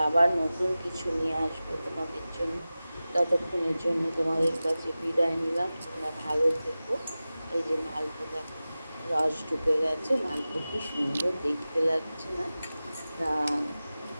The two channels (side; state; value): both; inverted; correlation -0.96